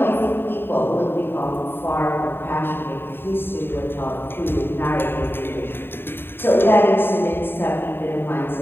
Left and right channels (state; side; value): late; right; 0.11 ms